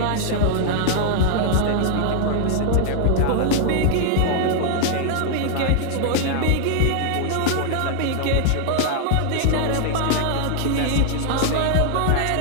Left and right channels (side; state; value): both; different; correlation 0.00